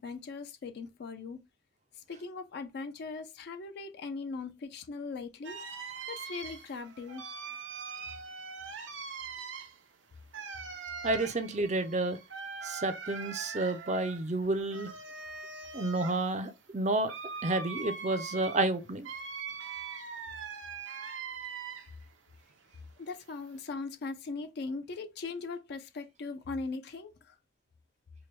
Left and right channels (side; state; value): both; normal; correlation 0.23